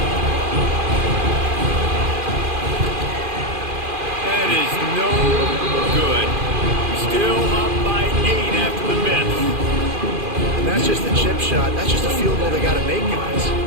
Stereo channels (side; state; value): left; late; 2.4 ms